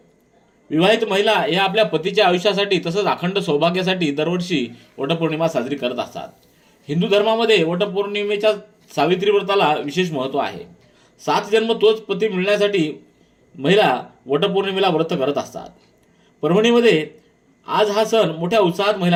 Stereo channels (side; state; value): both; identical; correlation 1.00